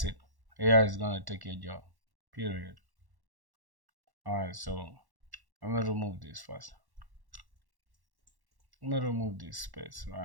it. AI is gonna take your job. Period. Alright, so I'm gonna remove this first. I'm gonna remove this space,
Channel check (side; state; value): left; late; 1.1 ms